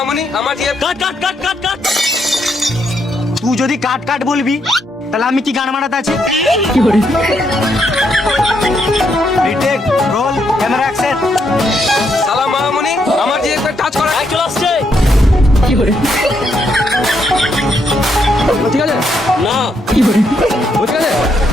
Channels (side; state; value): both; normal; correlation 0.76